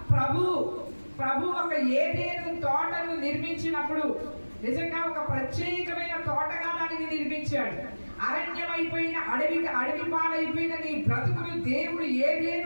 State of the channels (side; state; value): both; inverted; correlation -1.00